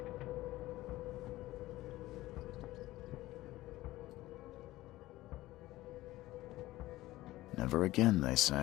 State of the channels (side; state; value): right; quieter; 17.0 dB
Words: Never again, they